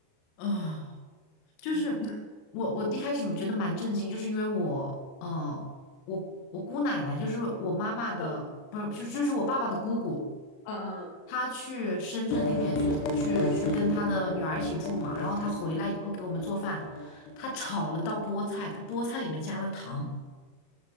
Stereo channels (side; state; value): right; late; 38 ms